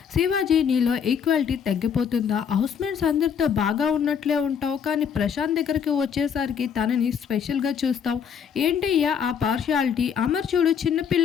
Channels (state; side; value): quieter; right; 7.4 dB